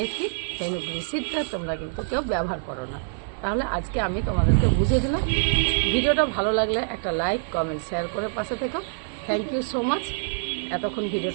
ফেনুগ্রিক তোমরা কিন্তু কেউ ব্যবহার করো না। তাহলে আজকে আমি তোমাদেরকে বুঝিয়ে দিলাম। ভিডিওটা ভালো লাগলে একটা লাইক, কমেন্ট, শেয়ার করে পাশে থেকো। থ্যাংক ইউ সো মাচ এতক্ষণ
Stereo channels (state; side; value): silent; left; 56 dB below the other